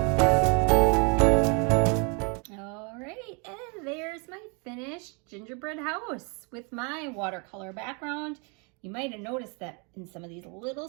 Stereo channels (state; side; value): quieter; left; 34.1 dB